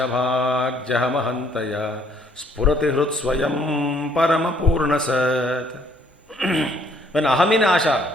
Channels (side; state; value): both; normal; correlation 0.64